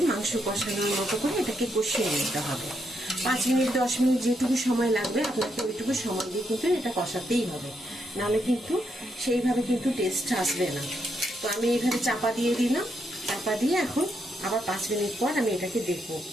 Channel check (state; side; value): normal; both; correlation 0.79